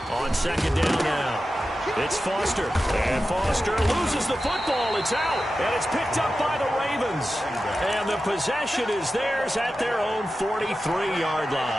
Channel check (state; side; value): normal; both; correlation 0.93